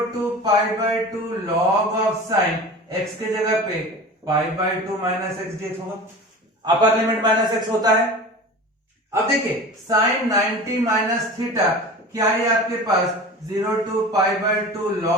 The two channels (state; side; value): normal; both; correlation 0.36